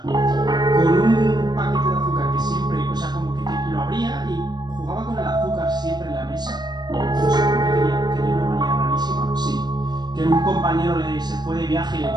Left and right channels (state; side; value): late; left; 0.20 ms